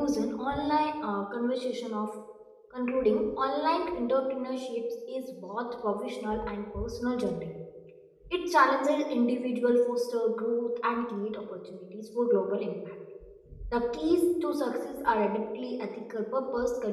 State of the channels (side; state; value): both; identical; correlation 1.00